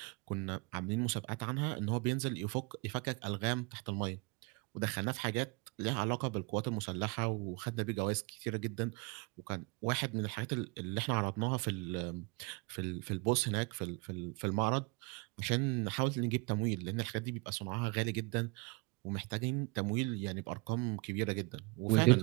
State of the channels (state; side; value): quieter; left; 28.3 dB